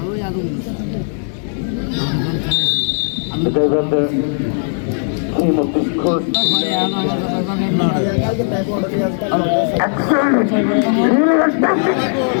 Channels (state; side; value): silent; right; 58 dB below the other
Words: The Gaibanda team of this course. Excellent. Really fantastic.